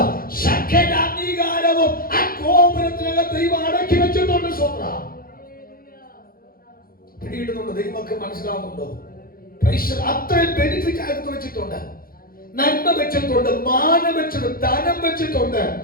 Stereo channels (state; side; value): late; right; 0.42 ms